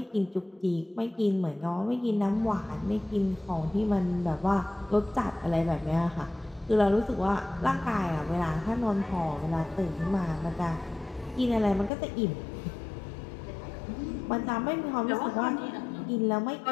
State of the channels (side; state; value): right; drops out; at 11.9 s